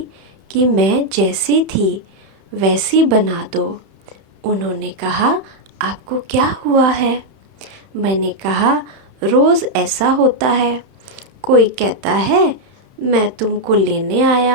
कि मैं जैसी थी वैसी बना दो। उन्होंने कहा, आपको क्या हुआ है? मैंने कहा, रोज़ ऐसा होता है, कोई कहता है मैं तुमको लेने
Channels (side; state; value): left; late; 31 ms